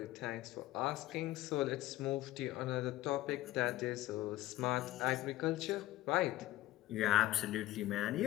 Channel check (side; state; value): right; quieter; 15.8 dB